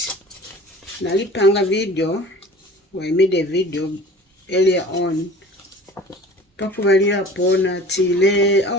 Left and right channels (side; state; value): both; normal; correlation 0.43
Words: nalipanga video, I made a video earlier on pakubalira pona tile